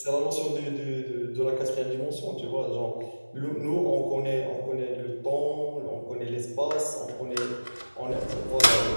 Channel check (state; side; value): inverted; both; correlation -1.00